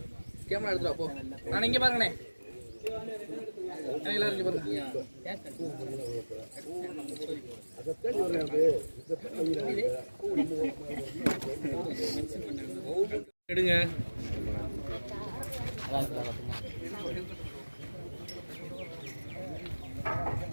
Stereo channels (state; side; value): inverted; both; correlation -1.00